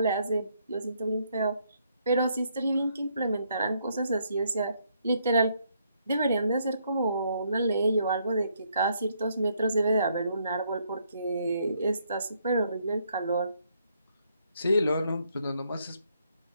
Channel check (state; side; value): inverted; both; correlation -0.72